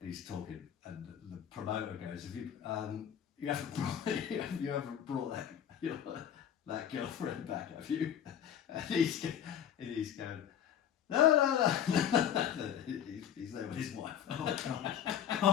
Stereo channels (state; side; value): quieter; right; 9.5 dB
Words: He's talking, and the promoter goes, "Have you haven't brought that, that girlfriend back, have you? And he's going, no. He's there with his wife. Oh God!